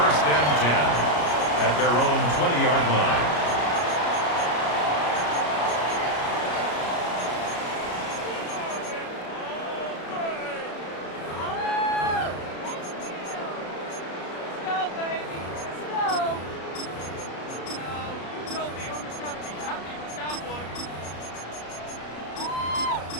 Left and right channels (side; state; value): right; late; 33 ms